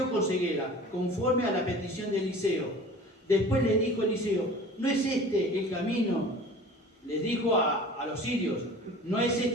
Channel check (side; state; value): both; normal; correlation 0.42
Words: con ceguera, conforme a la petición de Eliseo. Después le dijo Eliseo, ¿no es este el camino? Les dijo a los sirios, no es